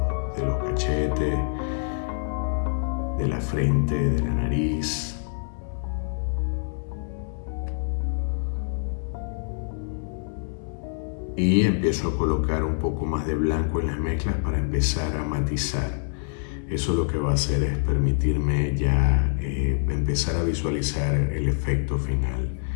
de los cachetes, de la frente, de la nariz. Y empiezo a colocar un poco más de blanco en las mezclas para empezar a matizar. Eso lo que va a hacer es permitirme ya empezar a visualizar el efecto final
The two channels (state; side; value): silent; right; 61 dB below the other